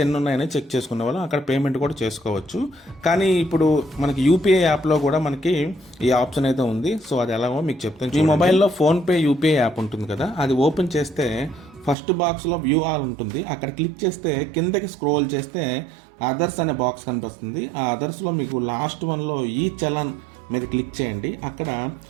ఎన్ని ఉన్నాయని చెక్ చేసుకునే వాళ్ళం, అక్కడ పేమెంట్ కూడా చేసుకోవచ్చు. కానీ ఇప్పుడు మనకి యూపీఐ యాప్లో కూడా మనకి ఈ ఆప్షన్ అయితే ఉంది. సో అది ఎలాగో మీకు చెప్తాను. మీ మొబైల్లో ఫోన్పే యూపీఐ యాప్ ఉంటుంది కదా, అది ఓపెన్ చేస్తే ఫస్ట్ బాక్స్లో వ్యూ ఆల్ ఉంటుంది. అక్కడ క్లిక్ చేస్తే కిందకి స్క్రోల్ చేస్తే అదర్స్ అనే బాక్స్ కనిపిస్తుంది. ఆ అదర్స్లో మీకు లాస్ట్ వన్లో ఈ చలాన్ మీద క్లిక్ చేయండి. అక్కడ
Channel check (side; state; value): left; drops out; at 12.0 s